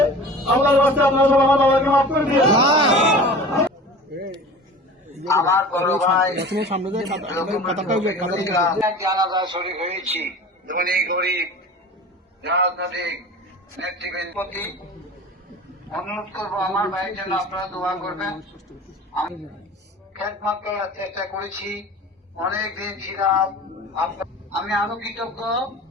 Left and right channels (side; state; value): both; normal; correlation 0.39